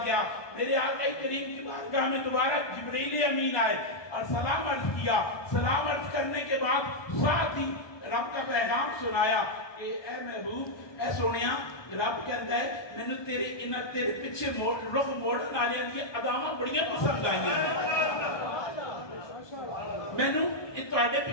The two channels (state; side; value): late; right; 1.2 ms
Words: گیا، میرے آقا کریم کی بارگاہ میں دوبارہ جبریل امین آئے اور سلام عرض کیا۔ سلام عرض کرنے کے بعد ساتھ ہی رب کا پیغام سنایا کہ اے محبوب، اے سونیا، رب کہتا ہے میں نے تیرے پیچھے رخ موڑن والے دی اداواں بڑیاں پسند آئیاں ہیں، میں نے تواڈے